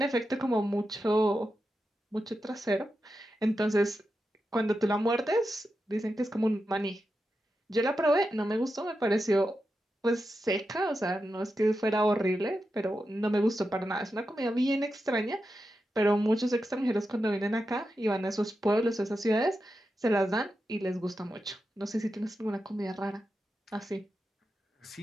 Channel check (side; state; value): both; normal; correlation 0.89